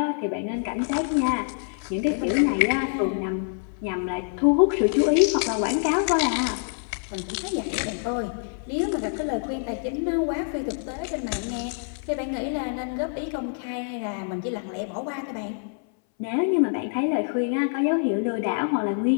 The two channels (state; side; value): silent; right; 61 dB below the other